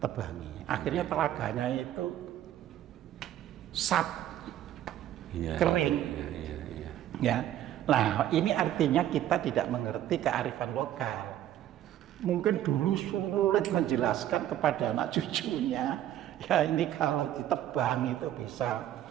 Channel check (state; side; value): quieter; left; 12.2 dB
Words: Akhirnya telaganya itu kering. Iya. Ya. Nah, ini artinya kita tidak mengerti kearifan lokal. Mungkin dulu sulit menjelaskan kepada anak cucunya. Ya ini kalau ditebang itu bisa